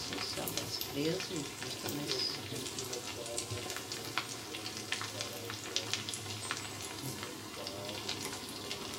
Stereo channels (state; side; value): identical; both; correlation 1.00